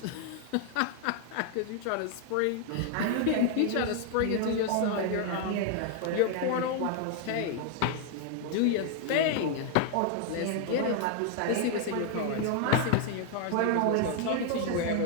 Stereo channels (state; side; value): different; both; correlation 0.00